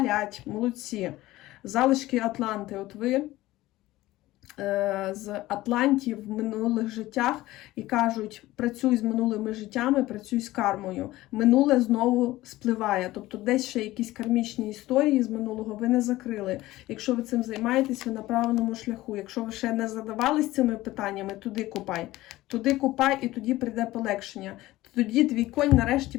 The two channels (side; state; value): right; quieter; 17.2 dB